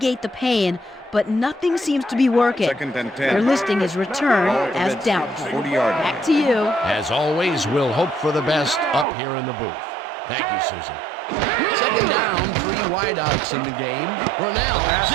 the pain, but nothing seems to be working. Second and 10. They're listing his return Ball at the as Redskins, doubtful. 40-yard line. Back to you. As always, we'll hope for the best up here in the booth. Thank you, Susie. Second down, 3 wideouts in the game. Brunell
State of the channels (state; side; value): drops out; left; at 9.1 s